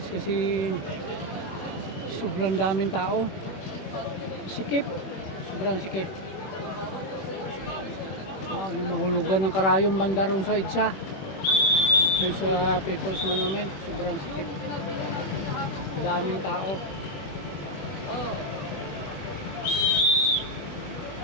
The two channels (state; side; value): late; right; 21 ms